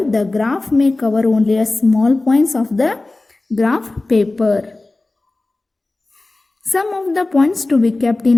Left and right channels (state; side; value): quieter; right; 3.1 dB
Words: graph may cover only a small points of the graph paper. Some of the points to be kept